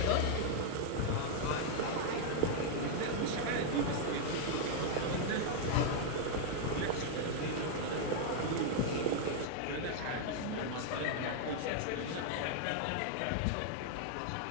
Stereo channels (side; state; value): both; different; correlation 0.00